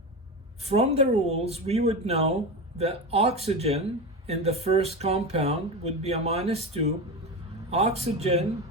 from the rules, we would know that oxygen in the first compound would be a -2, oxygen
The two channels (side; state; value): both; normal; correlation 0.22